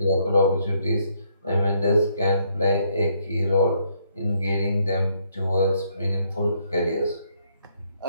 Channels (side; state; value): both; inverted; correlation -0.71